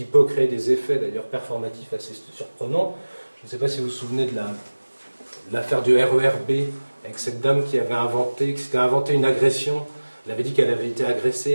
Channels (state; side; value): inverted; both; correlation -1.00